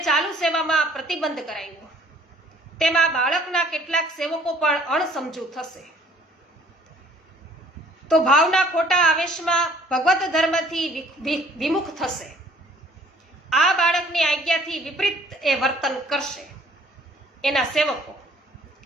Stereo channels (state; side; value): normal; both; correlation 0.56